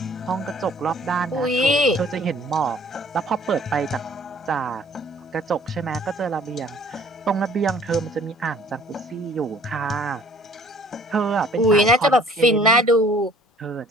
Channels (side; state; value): both; normal; correlation 0.55